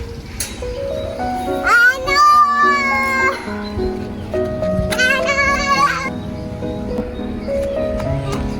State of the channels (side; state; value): both; identical; correlation 1.00